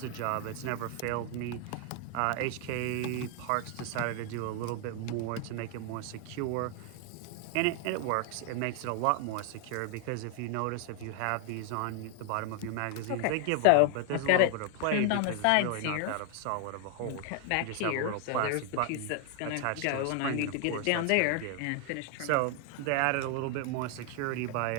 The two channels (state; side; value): different; both; correlation 0.00